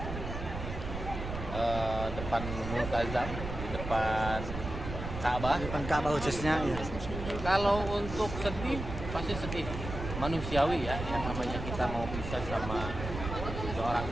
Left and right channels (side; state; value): right; noise; rumble, 7 dB below the sound